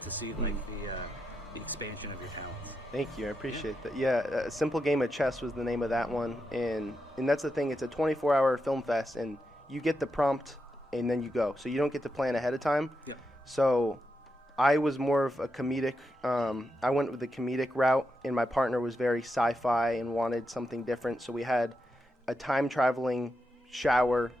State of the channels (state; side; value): normal; both; correlation 0.86